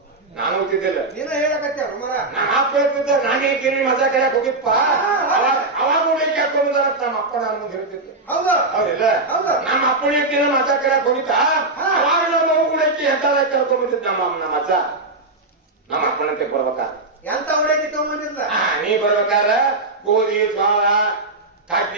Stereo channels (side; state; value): left; quieter; 3.1 dB